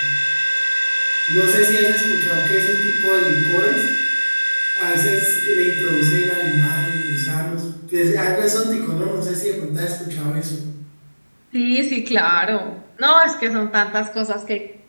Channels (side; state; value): both; inverted; correlation -1.00